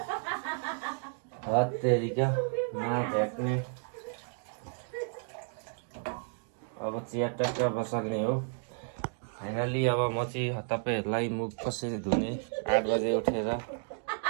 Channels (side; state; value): left; silent; 56 dB below the other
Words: हत्तेरिका नभ्याक्ने अब चिया टक्क बसाल्ने हो फाइनली। अब म चाहिँ तपाईँहरूलाई मुख कसरी धुने 8 बजे उठेर